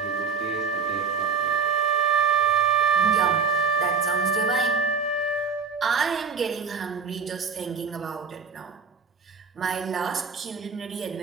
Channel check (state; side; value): quieter; left; 5.5 dB